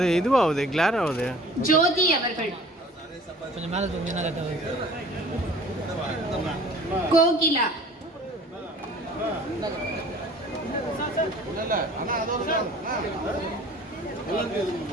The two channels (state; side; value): normal; both; correlation 0.48